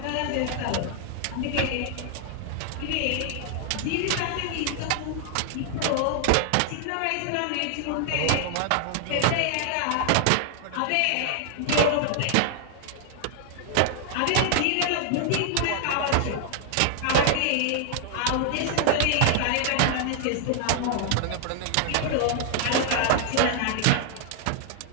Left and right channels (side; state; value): both; different; correlation 0.00